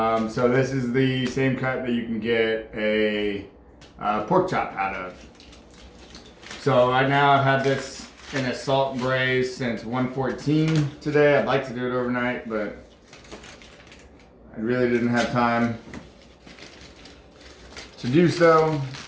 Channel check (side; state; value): both; identical; correlation 1.00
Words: this is the same cut that you can get a pork chop out of. So right now I've had this in a salt and braise since 1:14 today. I'd like to do it overnight, but I really didn't have time to do so.